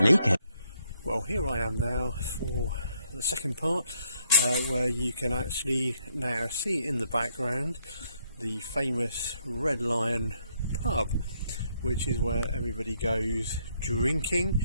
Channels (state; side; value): inverted; both; correlation -0.71